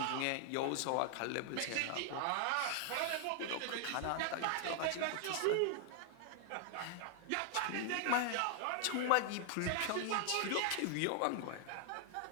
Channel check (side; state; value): both; different; correlation 0.00